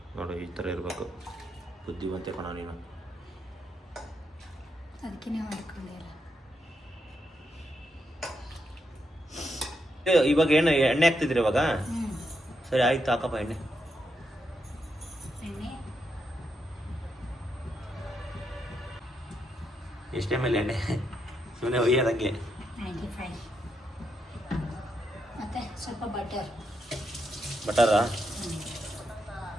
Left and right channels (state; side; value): normal; both; correlation 0.81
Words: ನೋಡು, ಈ ಥರ ಇರಬೇಕು. ಬುದ್ಧಿವಂತೆ ಕಣ ನೀನು. ಅದಕ್ಕೆ ನೀವು ಮಾಡ್ಕೊಂಡಿಲ್ಲ. ಇವಾಗ ಏನು ಎಣ್ಣೆ ಹಾಕ್ತಿದ್ರಿ ಇವಾಗ? ಸರಿ ಆಯ್ತು, ಹಾಕಪ್ಪ ಎಣ್ಣೆ. ಎಷ್ಟೇ ಮೇಲೆ ಎಣ್ಣೆ ಸುಮ್ಮನೆ ಒಯ್ಯೋದಂಗೆ. 95. ಮತ್ತು ಸ್ವಲ್ಪ ಬಟರ್. ಬಟರಾ?